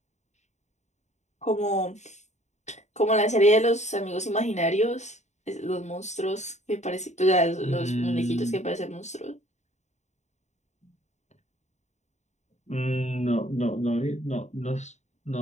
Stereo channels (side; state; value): right; late; 0.34 ms